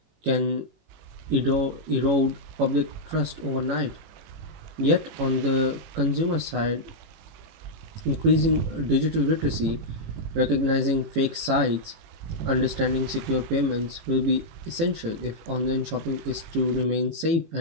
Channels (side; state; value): left; late; 18 ms